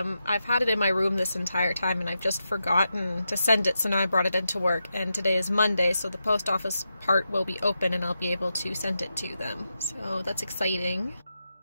I've had it in my room this entire time and I've just forgotten to send it, so now I brought it into work, and today is Monday, so the post office part will be open and I'll be able to send it to them. So that's exciting.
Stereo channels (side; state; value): both; inverted; correlation -0.87